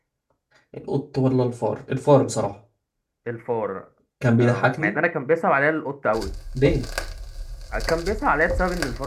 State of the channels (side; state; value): both; identical; correlation 1.00